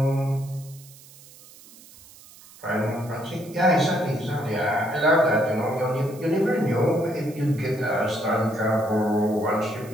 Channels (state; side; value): noise; right; hiss, 22 dB below the sound